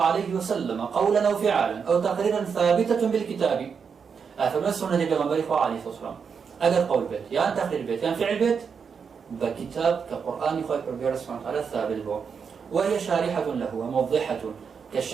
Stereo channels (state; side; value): quieter; left; 6.2 dB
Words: عليه وسلم قولا أو فعلا أو تقريرا ثابتة بالكتاب. أفرمل السنة بغنبري خواه عليه الصلاة والسلام أجر قول بيت يعني تقرير بيت يعني فعل بيت بكتاب كقرآن خواه ربي سبحانه وتعالى ثابت به، وهي شارحة له وموضحة